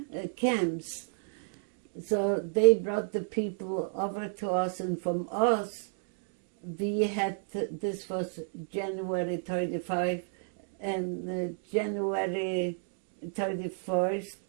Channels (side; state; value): left; silent; digital silence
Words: camps. So they brought the people over to us, and from us, we had, this was January 35 and January 31st,